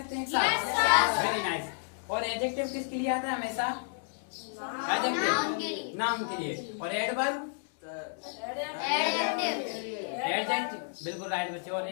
हैं एक साथ? Very nice. और एडजेक्टिव किसके लिए आता है हमेशा? एडजेक्टिव, नाउन के लिए। और एडवर्ब? एडजेक्टिव, बिल्कुल राइट बच्चे। और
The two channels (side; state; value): right; silent; digital silence